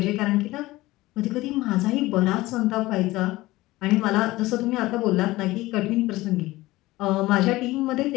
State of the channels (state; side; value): quieter; right; 18.6 dB